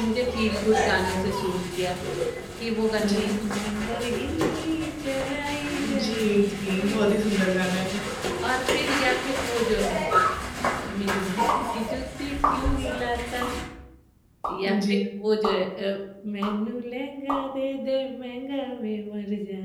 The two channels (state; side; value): identical; both; correlation 1.00